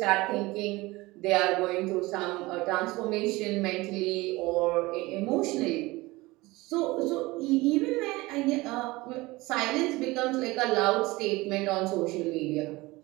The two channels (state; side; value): quieter; left; 21.2 dB